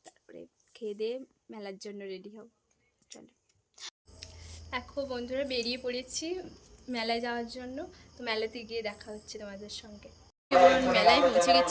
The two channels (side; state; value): both; identical; correlation 1.00